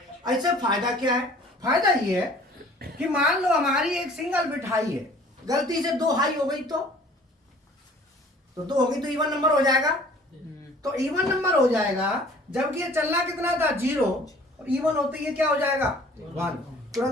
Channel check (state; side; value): normal; both; correlation 0.51